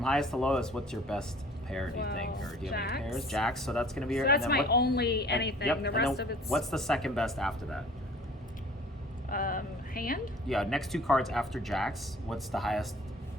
highest to lowest, what's your best pair, do you think? Well, Or do you have any jacks. pairs? Jacks, so that's going to be your... So that's and then my what- only and- anything. yep, The and rest then of it's What's the second best after that? hand. Yeah, next 2 cards after jacks, what's the highest?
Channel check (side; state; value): both; normal; correlation 0.49